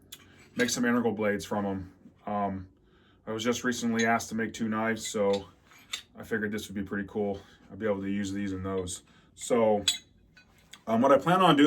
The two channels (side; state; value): both; identical; correlation 1.00